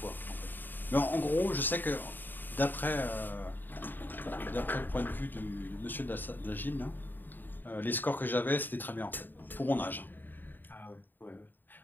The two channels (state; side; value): late; right; 0.091 ms